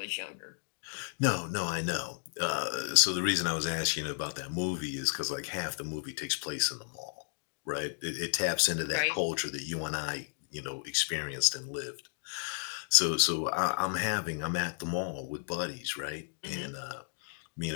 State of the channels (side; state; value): right; silent; digital silence